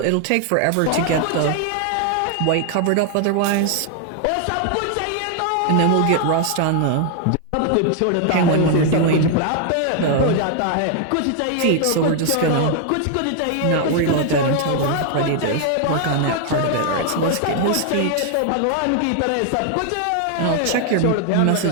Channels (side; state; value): both; different; correlation 0.00